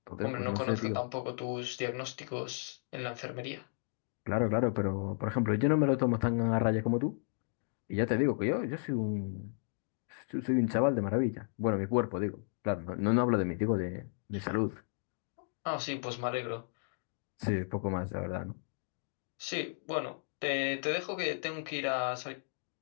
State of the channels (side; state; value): right; silent; digital silence